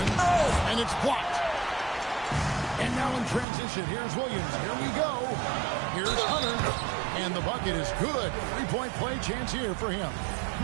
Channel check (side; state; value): left; drops out; at 3.5 s